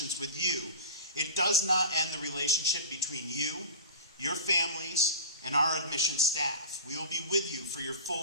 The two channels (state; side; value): inverted; both; correlation -0.33